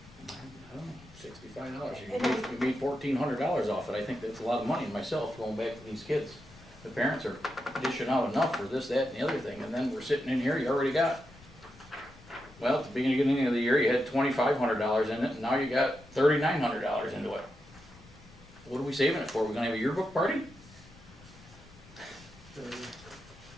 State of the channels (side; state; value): left; noise; rumble, 23 dB below the sound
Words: I don't know, $65. You made $1,400 off it. I think that's a lot of money myself, going back to these kids. The parents are dishing out enough for this, that, and the other thing, and then we're sitting in here, you already got, well, at the beginning of the year, you had $2,500 in it, and now you got $3,900 into it. What are we saving it for? We're gonna have a yearbook party?